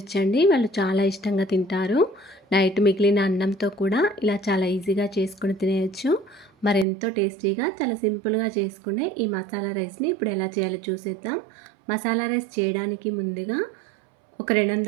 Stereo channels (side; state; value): left; drops out; at 6.9 s